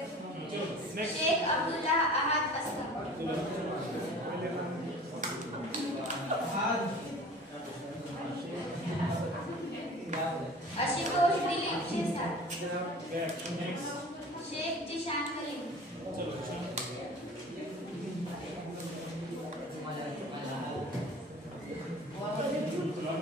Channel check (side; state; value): both; normal; correlation 0.42